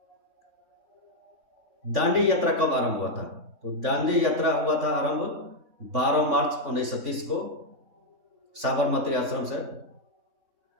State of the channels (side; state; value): left; late; 3.6 ms